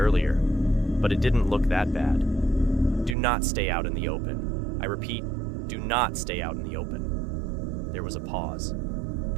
but it didn't look that bad. "Do not stay out in the open. I repeat, do not stay out in the open." There was a pause.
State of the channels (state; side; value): drops out; left; at 3.2 s